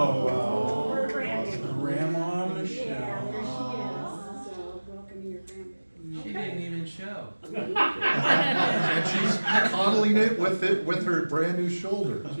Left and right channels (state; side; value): inverted; both; correlation -1.00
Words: wow. Her grandbaby. Grandma Yeah, there she Michelle. is. So welcome to your grandbaby. She didn't even show. And coddling it with her brand new shoulder. Oh,